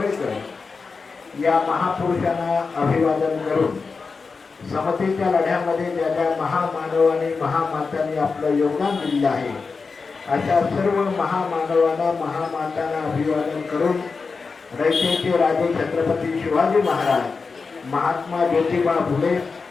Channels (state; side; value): quieter; right; 4.6 dB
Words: या महापुरुषांना अभिवादन करून समतेच्या लढ्यामध्ये ज्या ज्या महामानव आणि महामातांनी आपलं योगदान दिलेलं आहे अशा सर्व महामानवांना महामातांना अभिवादन करून रयतेचे राजे छत्रपती शिवाजी महाराज, महात्मा ज्योतिबा फुले,